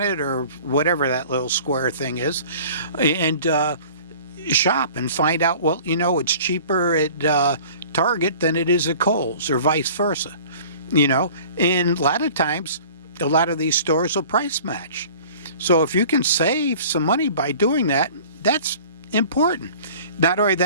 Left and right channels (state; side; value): inverted; both; correlation -0.46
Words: or whatever that little square thing is, and shop and find out, well, it's cheaper at Target than it is at Kohl's, or vice versa. And a lot of times, a lot of these stores will price match. So if you can save some money by doing that, that's important. Not only